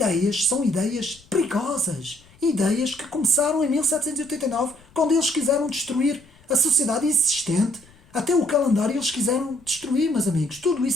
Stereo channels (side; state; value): left; noise; rumble, 27 dB below the sound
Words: são ideias perigosas, ideias que começaram em 1789 quando eles quiseram destruir a sociedade existente, até o calendário eles quiseram destruir, meus amigos. Tudo